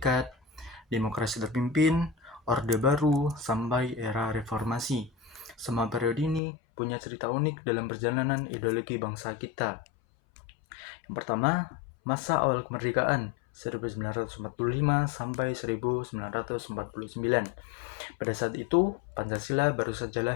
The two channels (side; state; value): right; drops out; at 6.4 s